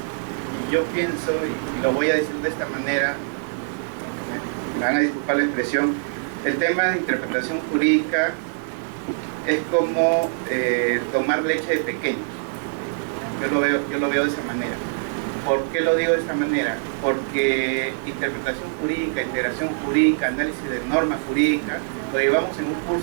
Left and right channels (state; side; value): silent; left; 63 dB below the other